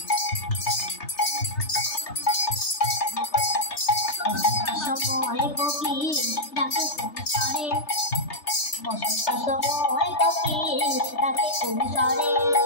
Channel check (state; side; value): late; right; 3.3 ms